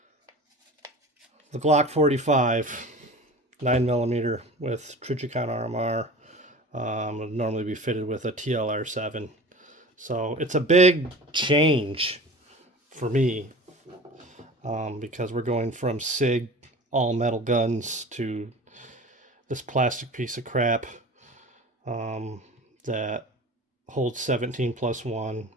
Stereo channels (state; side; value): normal; both; correlation 0.38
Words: The Glock 45, 9mm with Trichicon RMR. Would normally be fitted with a TLR7. So it's a big change for me because we're going from SIG all metal guns to this plastic piece of crap that holds 17+1,